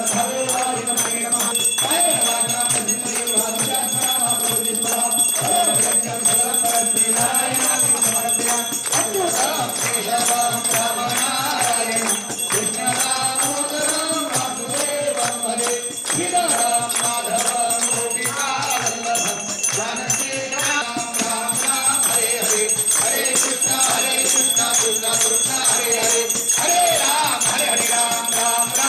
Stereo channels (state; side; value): identical; both; correlation 1.00